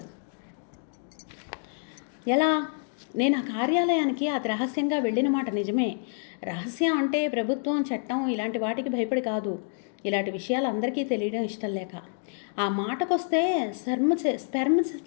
ఎలా? నేను ఆ కార్యాలయానికి అతి రహస్యంగా వెళ్ళిన మాట నిజమే. రహస్యం అంటే ప్రభుత్వం, చట్టం ఇలాంటి వాటికి భయపడి కాదు. ఇలాంటి విషయాలు అందరికీ తెలియడం ఇష్టం లేక. ఆ మాటకొస్తే స్పెర్మ్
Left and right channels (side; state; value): right; silent; digital silence